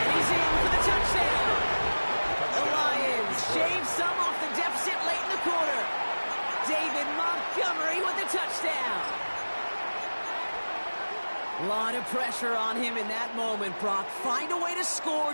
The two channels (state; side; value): inverted; both; correlation -1.00